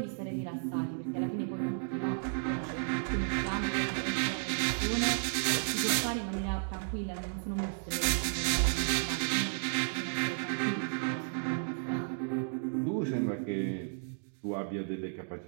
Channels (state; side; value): silent; left; digital silence